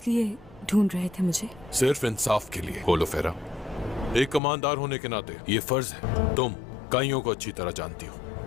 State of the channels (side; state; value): right; drops out; at 4.4 s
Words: लिए ढूंढ रहे थे मुझे? सिर्फ इंसाफ के लिए। बोलो फेरा, एक कमांडर होने के नाते ये फर्ज है। तुम काइयों को अच्छी तरह जानती हो,